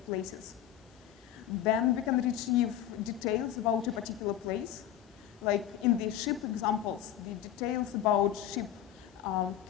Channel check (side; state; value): right; quieter; 11.3 dB